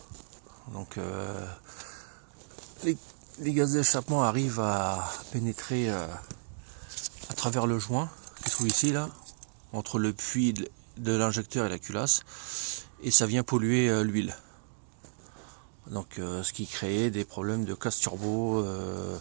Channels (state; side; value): silent; left; digital silence